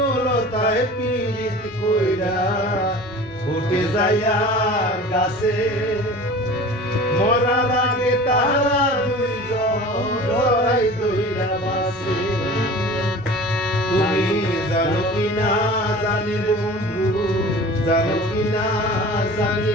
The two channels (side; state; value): both; normal; correlation 0.40